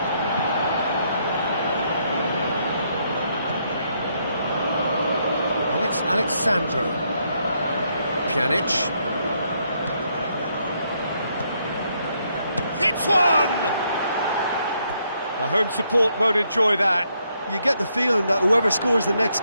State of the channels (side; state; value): both; inverted; correlation -0.75